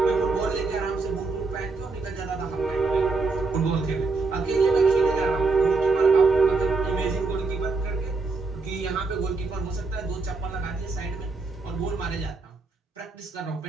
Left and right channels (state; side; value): quieter; left; 4.0 dB